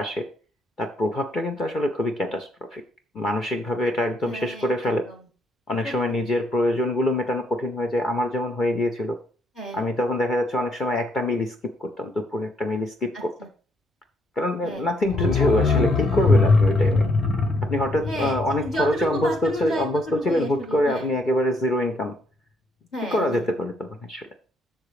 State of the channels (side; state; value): both; normal; correlation 0.71